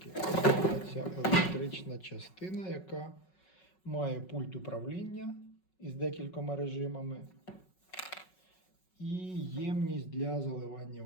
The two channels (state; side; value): late; right; 5.4 ms